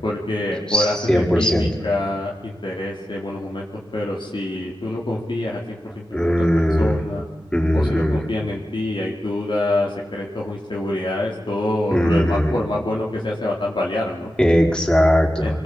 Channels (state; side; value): normal; both; correlation 0.91